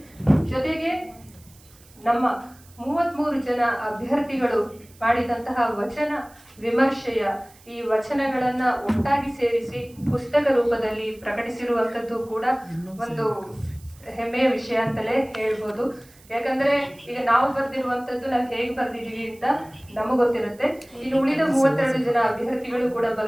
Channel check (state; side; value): noise; right; hiss, 26 dB below the sound